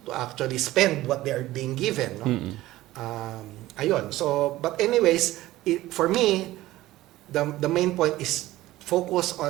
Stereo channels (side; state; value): left; quieter; 16.5 dB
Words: actually spend what they are being given? No? So, but anyways, for me, the main point is focus